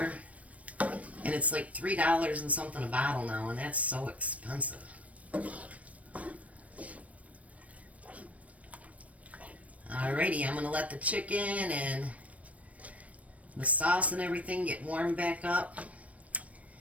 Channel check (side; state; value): left; late; 0.066 ms